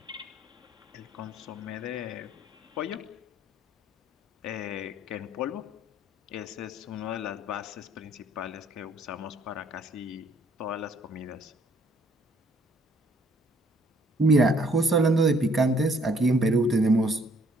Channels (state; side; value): normal; both; correlation 0.63